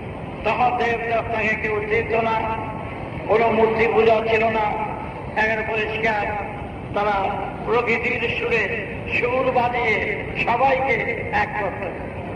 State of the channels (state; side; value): identical; both; correlation 1.00